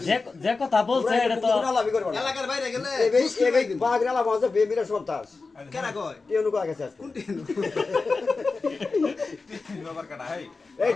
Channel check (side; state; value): right; quieter; 4.0 dB